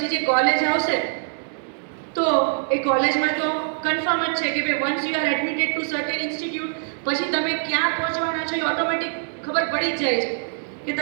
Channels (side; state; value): left; silent; digital silence